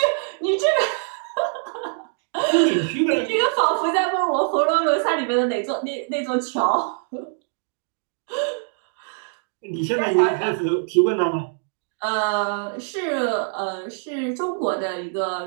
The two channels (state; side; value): silent; left; 63 dB below the other